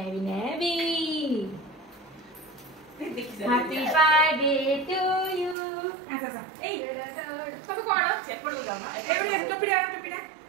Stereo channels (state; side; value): drops out; left; at 5.6 s